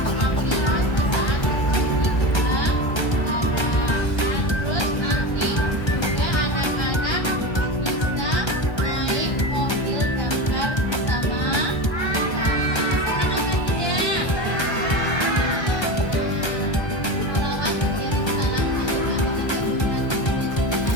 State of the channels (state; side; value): late; right; 1.3 ms